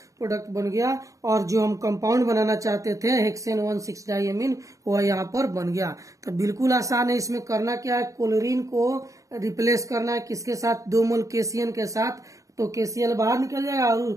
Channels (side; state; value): left; late; 0.16 ms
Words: प्रोडक्ट बन गया और जो हम कंपाउंड बनाना चाहते थे हेक्सेन 1,6 डाइएमीन वह यहाँ पर बन गया। तो बिल्कुल आसान है। इसमें करना क्या है, क्लोरीन को रिप्लेस करना है किसके साथ, 2 मोल KCl के साथ। तो KCl बाहर निकल जाएगा